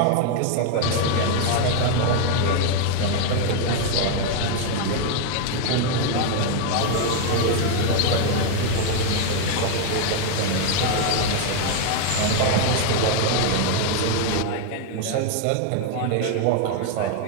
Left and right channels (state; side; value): different; both; correlation 0.00